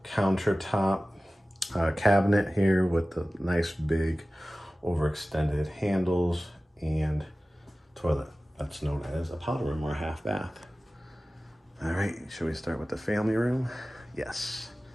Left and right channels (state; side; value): normal; both; correlation 0.97